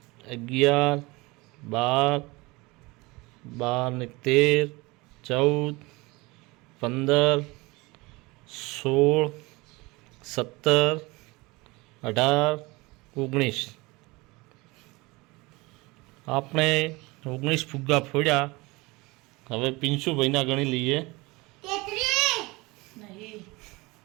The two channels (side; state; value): left; quieter; 23.5 dB